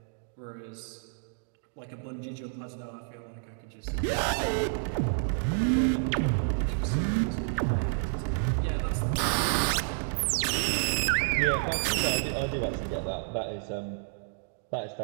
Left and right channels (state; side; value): silent; left; digital silence